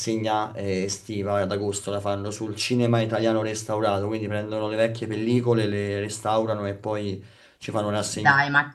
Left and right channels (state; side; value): identical; both; correlation 1.00